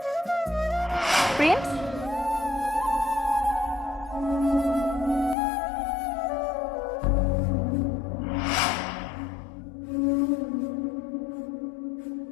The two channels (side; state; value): right; drops out; at 5.4 s